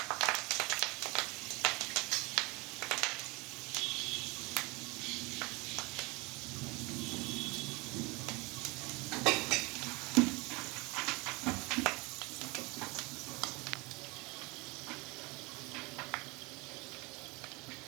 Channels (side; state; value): left; quieter; 26.0 dB